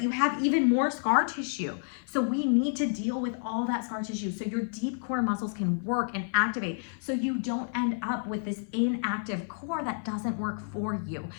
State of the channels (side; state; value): right; silent; 55 dB below the other